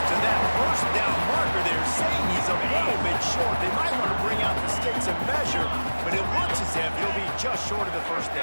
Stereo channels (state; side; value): inverted; both; correlation -1.00